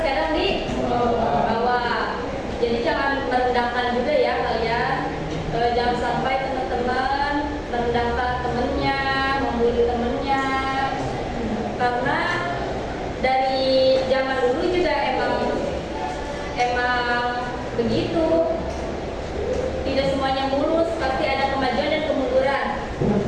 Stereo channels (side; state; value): both; identical; correlation 1.00